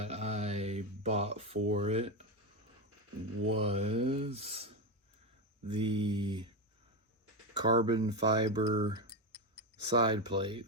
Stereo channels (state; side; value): normal; both; correlation 0.13